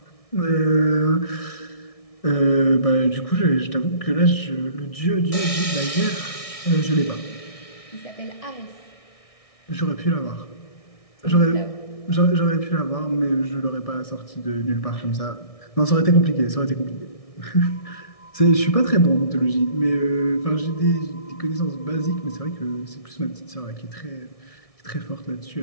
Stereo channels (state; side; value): late; right; 1.6 ms